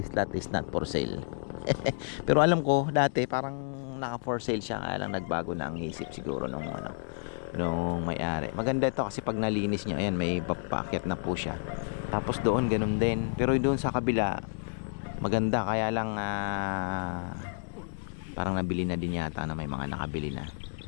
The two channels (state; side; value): silent; right; digital silence